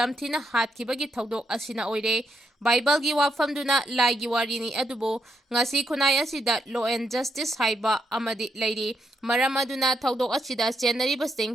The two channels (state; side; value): normal; both; correlation 0.79